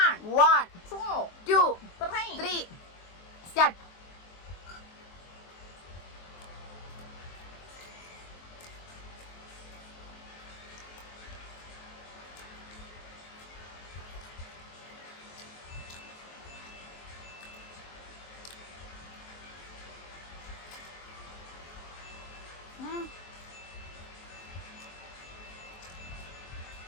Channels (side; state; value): right; late; 23 ms